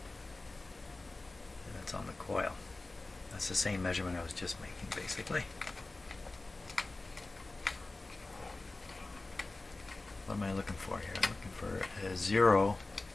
And that's on the coil. That's the same measurement I was just making, basically. What am I looking for here? I'm looking for a 0.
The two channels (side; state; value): right; quieter; 3.2 dB